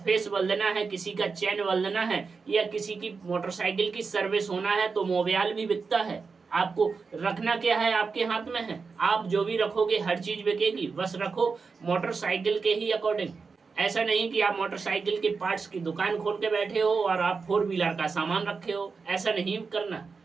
बदलना है, किसी का चैन बदलना है, या किसी की मोटरसाइकिल की सर्विस होना है। तो मोबाइल भी बिकता है, आपको रखना क्या है, आपके हाथ में है। आप जो भी रखोगे हर चीज बिकेगी, बस रखो मोटरसाइकिल के ही अकॉर्डिंग। ऐसा नहीं कि आप मोटरसाइकिल के पार्ट्स की दुकान खोल के बैठे हो और आप 4 व्हीलर का सामान रखे हो, ऐसा नहीं करना।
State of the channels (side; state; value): left; quieter; 4.8 dB